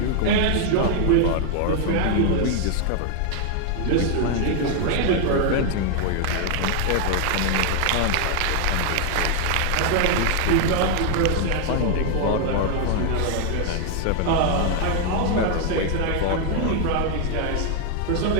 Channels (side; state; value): both; different; correlation 0.00